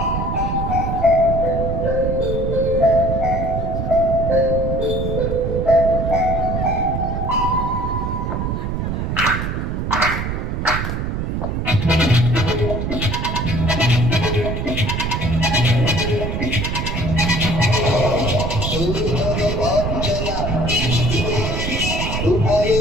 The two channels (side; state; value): right; noise; rumble, 2 dB below the sound